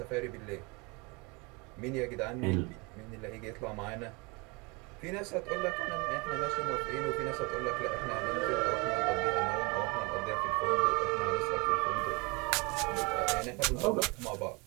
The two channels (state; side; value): quieter; left; 28.2 dB